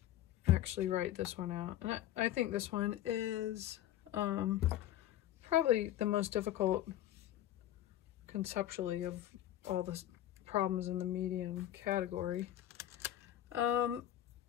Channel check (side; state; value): right; quieter; 12.8 dB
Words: actually write this one out. And I think this one is probably the most difficult conceptually of all the problems in the medium category.